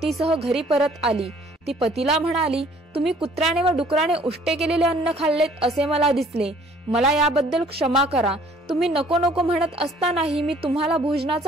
घरी परत आली. ती पतीला म्हणाली, तुम्ही कुत्र्याने व डुकराने उष्टे केलेले अन्न खाल्लेत असे मला दिसले. मला याबद्दल क्षमा करा. तुम्ही नको नको म्हणत असतानाही मी तुम्हाला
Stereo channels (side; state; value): both; normal; correlation 0.57